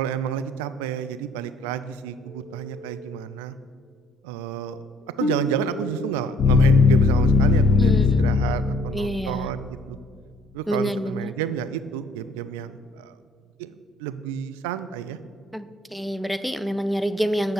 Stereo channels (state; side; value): normal; both; correlation 0.60